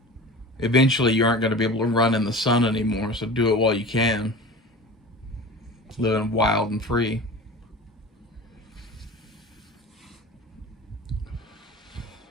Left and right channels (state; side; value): normal; both; correlation 0.36